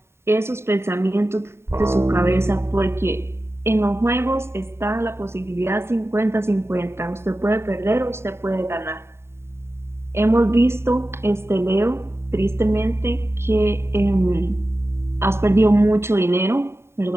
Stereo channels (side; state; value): left; late; 0.12 ms